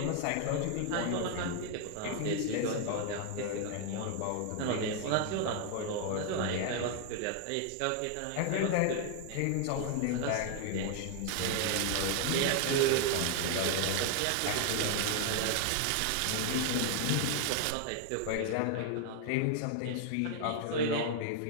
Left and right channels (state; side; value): different; both; correlation 0.00